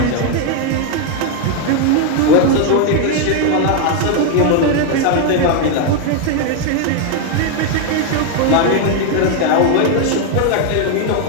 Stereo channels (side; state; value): both; different; correlation 0.01